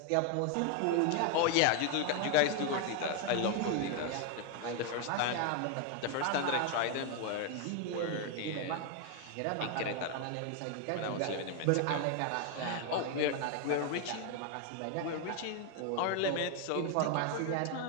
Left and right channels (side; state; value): both; different; correlation 0.01